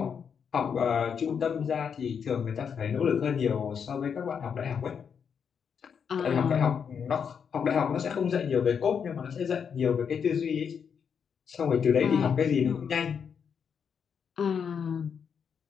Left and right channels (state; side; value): quieter; right; 7.0 dB